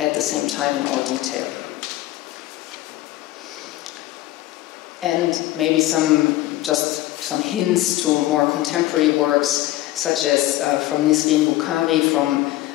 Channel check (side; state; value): right; quieter; 15.9 dB